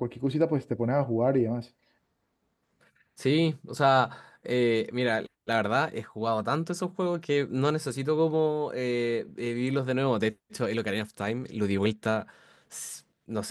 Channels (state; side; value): identical; both; correlation 1.00